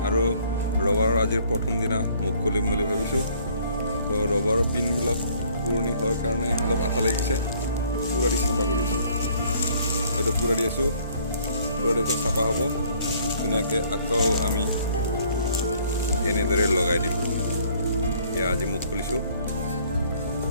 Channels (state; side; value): inverted; both; correlation -0.60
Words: আৰু ৰবাৰৰ আজিৰ প্ৰথম দিনা মুখ খুলিম বুলি ভাবিছোঁ। তো ৰবাৰৰ পিনবিলাক পুৰণি হোৱাৰ কাৰণে অলপ আঠা লাগিছে, পুৰা দি চাফা কৰি আছোঁ। এইটো পুৰা দি আছোঁ, পুৰা দি চাফা হ'ব ধুনীয়াকৈ। আকৌ আমি এনেদৰে লগাই দিম। এয়া আজি মুখ খুলিছোঁ,